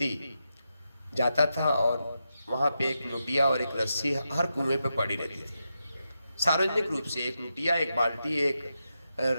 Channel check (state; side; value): inverted; both; correlation -0.87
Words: जाता था और वहाँ पे एक लुटिया और एक रस्सी हर कुएं पे पड़ी रहती थी। सार्वजनिक रूप से एक लुटिया, एक बाल्टी, एक